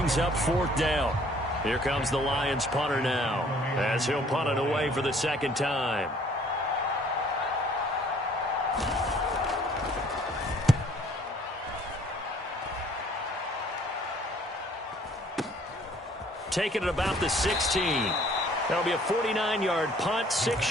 up 4th down. Here comes the Lions punter now as he'll punt it away for the second time. Taking it about the 16. That'll be a 49-yard punt,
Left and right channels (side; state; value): both; normal; correlation 0.58